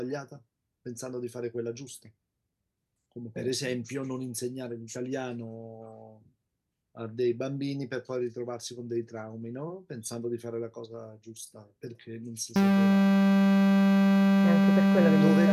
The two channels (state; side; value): identical; both; correlation 1.00